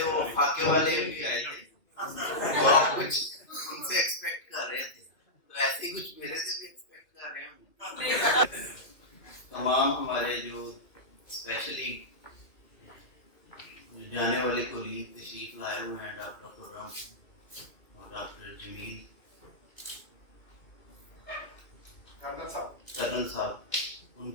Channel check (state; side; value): late; right; 2.1 ms